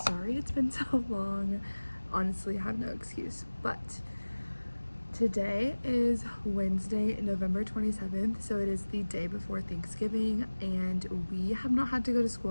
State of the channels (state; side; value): inverted; both; correlation -1.00